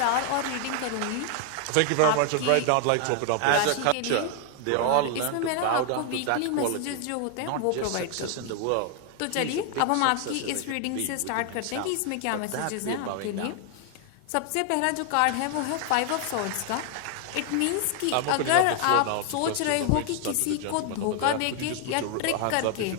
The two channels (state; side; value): different; both; correlation 0.00